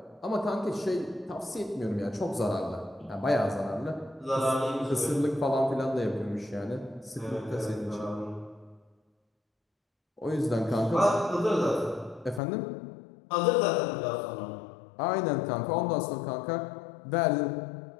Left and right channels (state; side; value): drops out; right; at 12.4 s